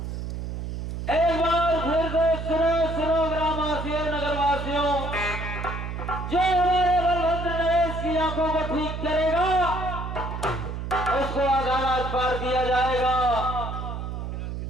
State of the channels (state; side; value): noise; right; hum, 5 dB below the sound